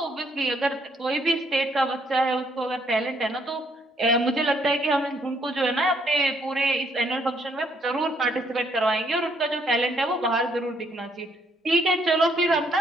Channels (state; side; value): normal; both; correlation 0.69